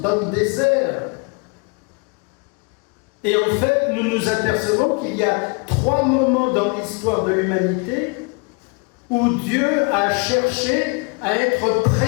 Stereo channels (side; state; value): right; quieter; 32.8 dB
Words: le désert. Et en fait, nous nous apercevons qu'il y a 3 moments dans l'histoire de l'humanité où Dieu a cherché à être